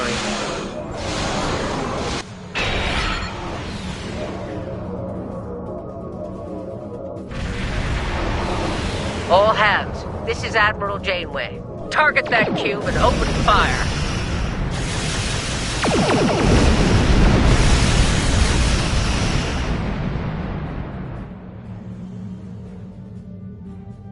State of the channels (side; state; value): both; identical; correlation 1.00